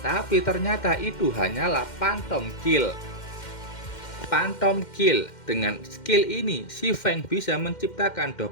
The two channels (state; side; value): late; right; 2.1 ms